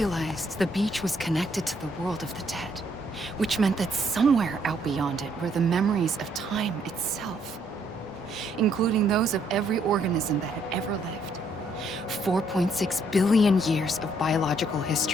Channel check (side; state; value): both; normal; correlation 0.70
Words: the beach was connected to the world of the dead, which meant that somewhere out beyond it were the memories of time itself, including those of every organism that had ever lived. 4.6 billion years of biological